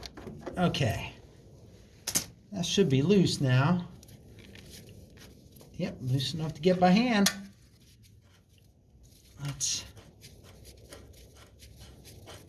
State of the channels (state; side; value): identical; both; correlation 1.00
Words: Okay, that should be loose now. Yep, loose enough to get by hand. Let's